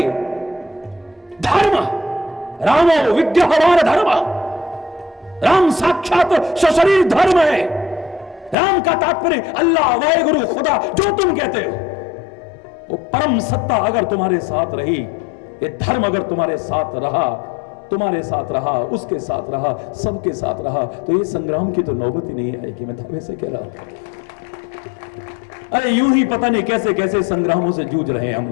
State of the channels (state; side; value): drops out; right; at 8.6 s